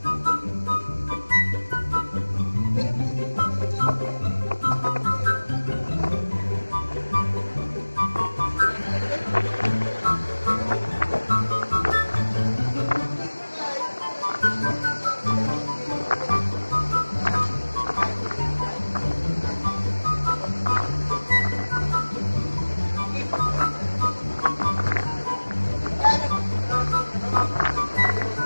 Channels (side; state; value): both; inverted; correlation -1.00